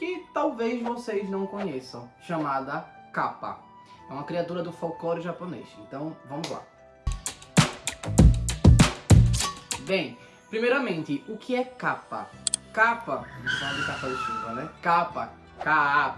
talvez vocês não conheçam, chamada Kappa. É uma criatura do folclore japonês, então vamos lá. Bem, primeiramente, o que é Kappa? Kappa, vamos falar de capa de chuva, né? Kappa,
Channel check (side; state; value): both; identical; correlation 1.00